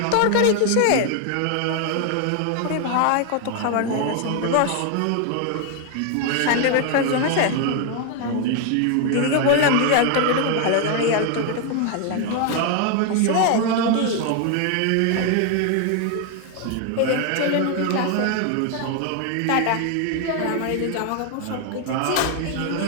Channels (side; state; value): both; different; correlation 0.00